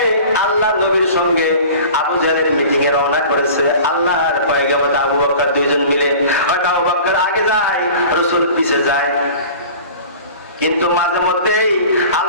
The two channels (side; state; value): both; inverted; correlation -0.41